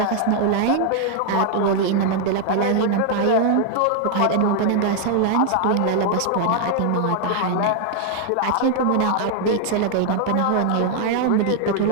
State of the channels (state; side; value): different; both; correlation 0.00